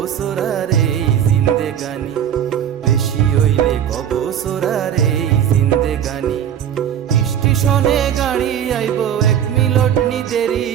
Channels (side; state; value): left; quieter; 9.5 dB